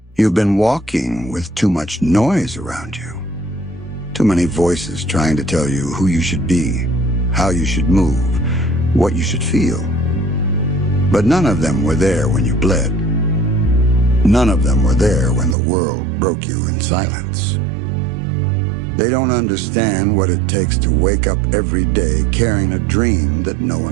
You've been walking with too much noise around you. Too many voices trying to tell you who you should be, how you should move, what you should feel. But none of them were there when you bled. None of them were there when the world broke you in silence. They don't understand what it takes to wake up every day carrying a dream that no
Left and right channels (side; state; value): left; drops out; at 15.6 s